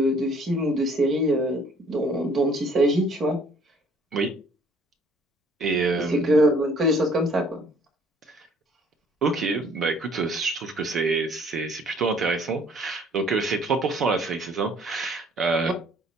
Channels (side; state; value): both; normal; correlation 0.58